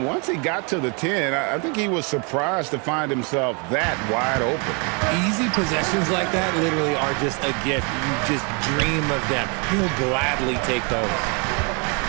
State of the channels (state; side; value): quieter; left; 34.2 dB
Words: once he got to the 10, I think he was surprised to find himself that wide open. Easy possessions like that literally are just a gift. You just dream of them. He'll gladly take those.